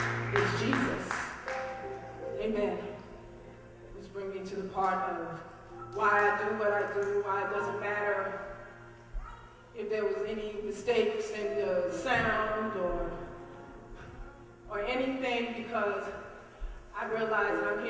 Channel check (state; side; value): identical; both; correlation 1.00